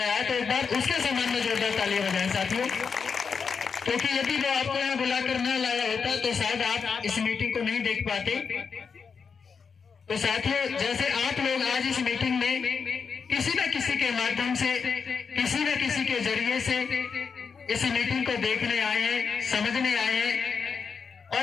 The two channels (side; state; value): right; quieter; 5.8 dB